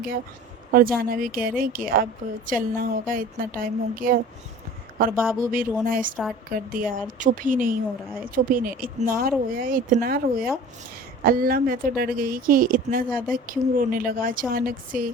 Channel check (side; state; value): both; normal; correlation 0.42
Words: और जाना भी कह रहे हैं कि अब चलना होगा, इतना टाइम हो गया। और बाबू भी रोना स्टार्ट कर दिया और चुप ही नहीं हो रहा है, चुप ही नहीं, इतना रोया इतना रोया। अल्लाह मैं तो डर गई कि इतना ज़्यादा क्यों रोने लगा अचानक से।